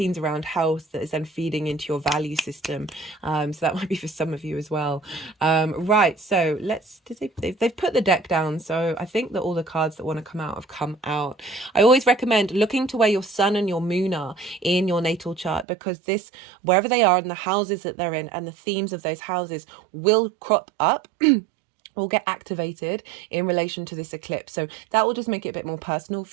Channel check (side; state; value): left; drops out; at 15.7 s